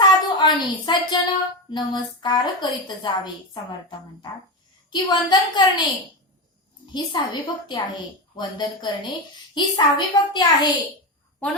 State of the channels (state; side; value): normal; both; correlation 0.16